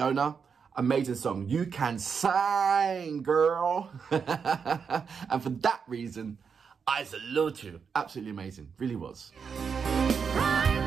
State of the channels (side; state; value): left; quieter; 6.2 dB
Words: amazing song. You can sing, girl. And for that reason, I salute you. Absolutely amazing. Really was.